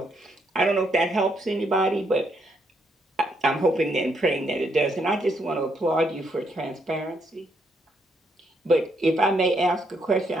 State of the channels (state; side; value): normal; both; correlation 0.75